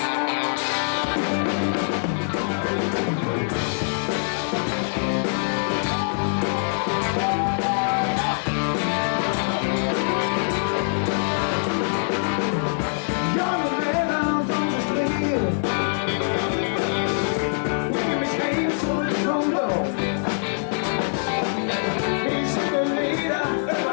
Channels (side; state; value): right; silent; digital silence